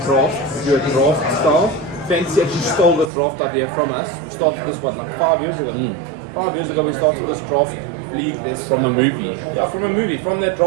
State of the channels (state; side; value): drops out; left; at 3.1 s